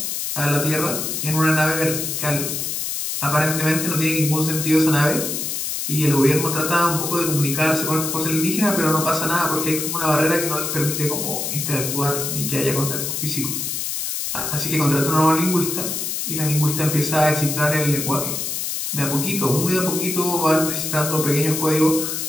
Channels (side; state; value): left; noise; hiss, 3 dB below the sound